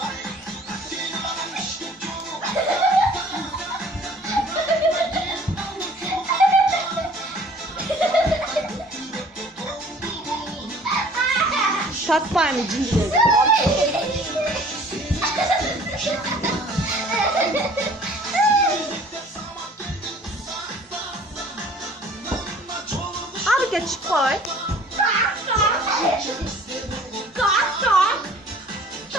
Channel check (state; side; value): normal; both; correlation 0.52